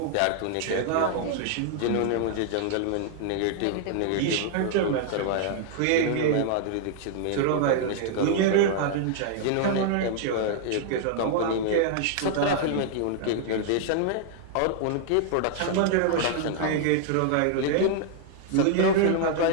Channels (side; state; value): both; different; correlation 0.00